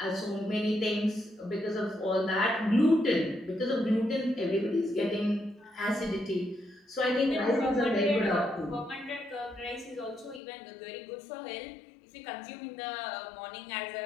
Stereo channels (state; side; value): drops out; right; at 10.4 s